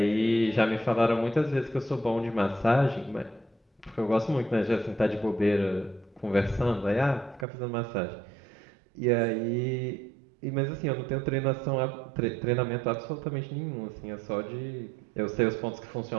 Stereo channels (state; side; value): drops out; left; at 7.5 s